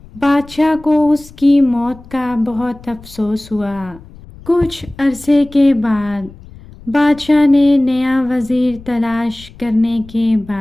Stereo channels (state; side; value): noise; left; rumble, 21 dB below the sound